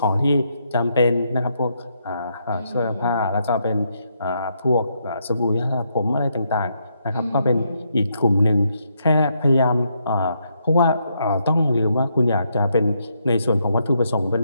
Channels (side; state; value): both; inverted; correlation -0.77